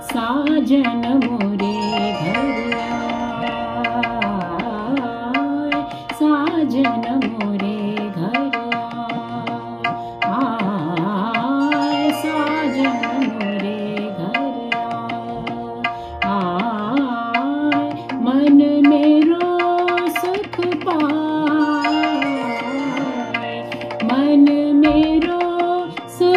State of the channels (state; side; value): identical; both; correlation 1.00